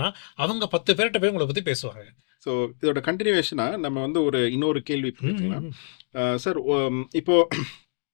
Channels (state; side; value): silent; right; digital silence